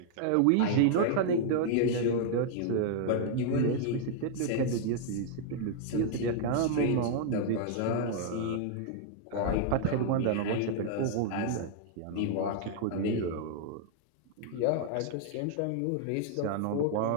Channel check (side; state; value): both; different; correlation -0.01